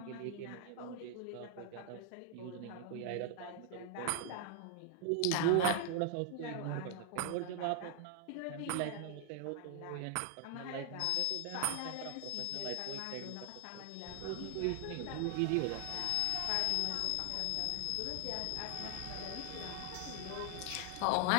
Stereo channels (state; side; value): different; both; correlation 0.00